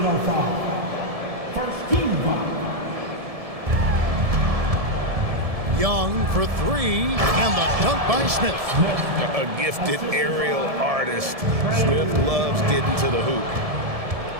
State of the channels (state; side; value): late; left; 1.7 ms